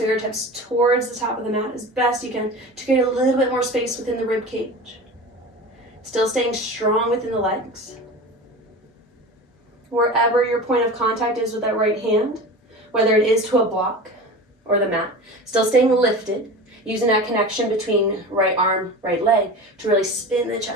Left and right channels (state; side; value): normal; both; correlation 0.32